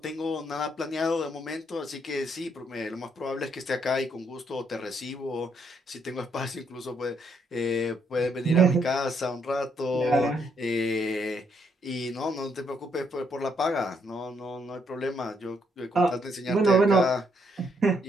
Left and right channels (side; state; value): both; normal; correlation 0.74